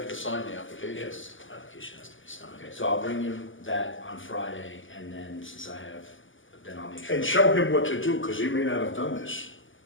to sign the application. Yes, application has to be signed. Okay, so I'll bring him that on Friday, and then since I have, then I'll make sure. And show him what to do, because he may not have done this.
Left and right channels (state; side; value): late; right; 0.57 ms